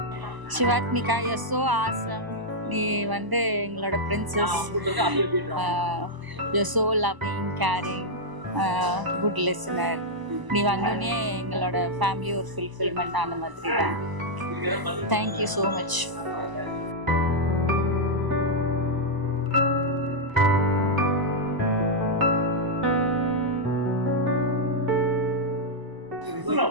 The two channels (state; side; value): late; left; 1.0 ms